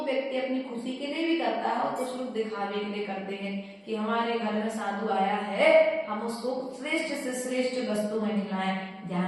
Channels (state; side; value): identical; both; correlation 1.00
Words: व्यक्ति अपनी खुशी के लिए भी करता है और कुछ लोग दिखावे के लिए करते हैं कि हमारे घर में साधु आया है, हम उसको श्रेष्ठ से श्रेष्ठ वस्तु में खिलाएं।